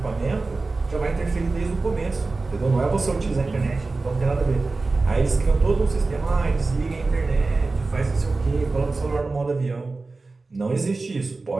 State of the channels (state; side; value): quieter; left; 3.6 dB